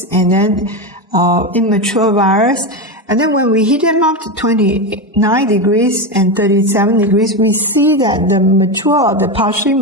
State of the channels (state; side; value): normal; both; correlation 0.14